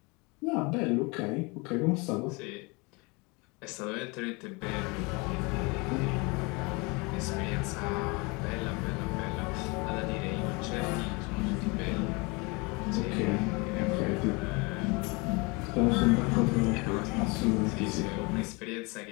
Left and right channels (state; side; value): quieter; right; 28.0 dB